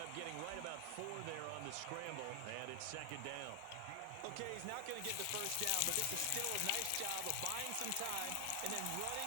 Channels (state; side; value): different; both; correlation 0.00